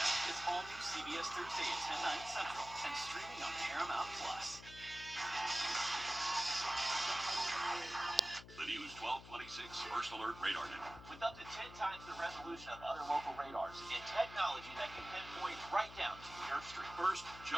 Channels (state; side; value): noise; left; hum, 15 dB below the sound